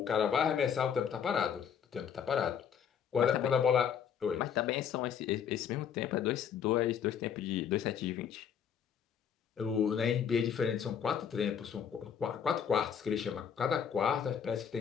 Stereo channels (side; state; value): right; quieter; 7.9 dB